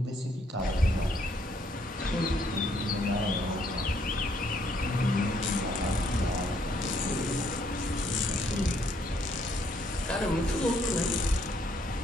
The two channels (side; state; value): both; normal; correlation 0.69